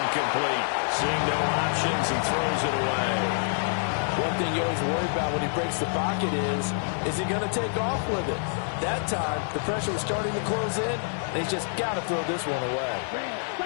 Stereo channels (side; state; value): right; silent; 56 dB below the other